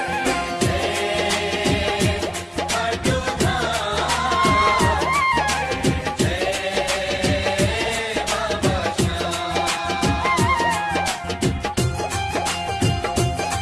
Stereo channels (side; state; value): both; identical; correlation 1.00